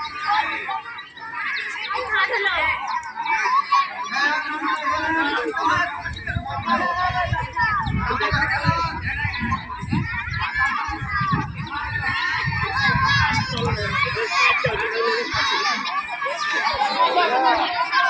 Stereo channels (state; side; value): identical; both; correlation 1.00